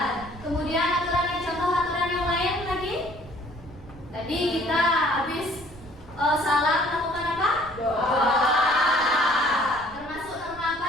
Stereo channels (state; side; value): noise; right; rumble, 19 dB below the sound